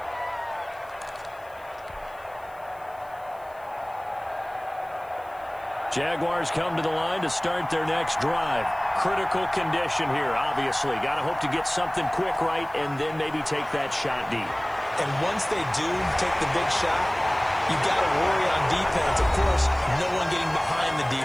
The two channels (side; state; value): left; noise; hiss, 28 dB below the sound